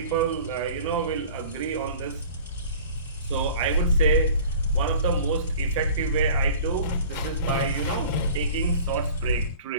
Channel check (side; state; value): both; inverted; correlation -0.43